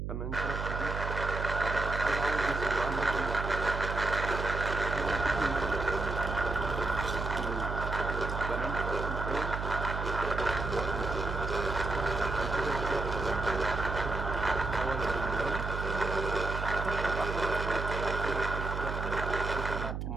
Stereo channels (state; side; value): noise; right; hum, 4 dB below the sound